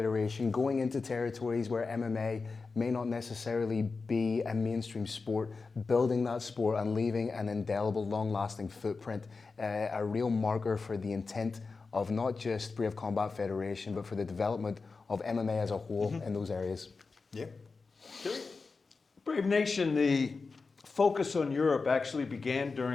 going into territories where MMA may not necessarily be a mainstream sport, building that sport and leaving an indelible, long-lasting footprint, a real marker for the intent of not just Brave Combat Federation, but for the development of MMA as a whole in those areas. Yeah. Brave Nation, the focus on Europe actually began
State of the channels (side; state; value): right; quieter; 4.3 dB